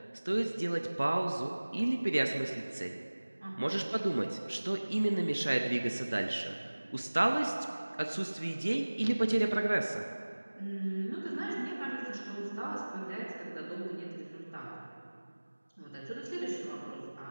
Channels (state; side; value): inverted; both; correlation -1.00